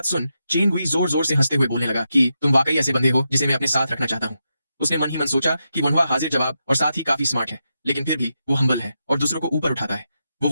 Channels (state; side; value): inverted; both; correlation -0.86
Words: सुन चेन गुई जोर जोर से हंसते हुए बोलने लगा कि तुम वाकई ऐसे बंदे हो जिसे मैं अपने साथ रखना चाहता हूँ। उसने मन ही मन सोचा कि वोनवा हाजिर जवाब और साथ ही काफी स्मार्ट है, लेकिन फिर भी वो हम्बल है और दूसरों को ऊपर उठाता है। वो